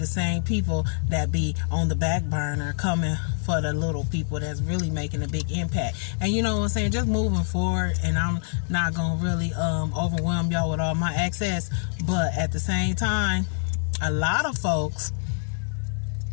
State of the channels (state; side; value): silent; right; digital silence